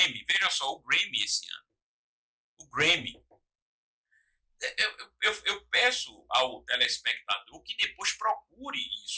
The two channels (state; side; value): identical; both; correlation 1.00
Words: veja só, o Grammy esse ano. O Grammy. Eu peço ao telespectador que depois procure